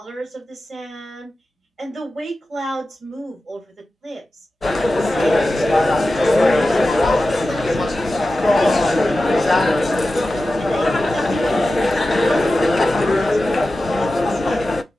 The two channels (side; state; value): both; normal; correlation 0.94